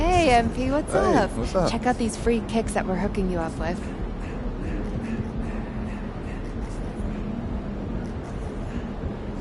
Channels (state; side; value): identical; both; correlation 1.00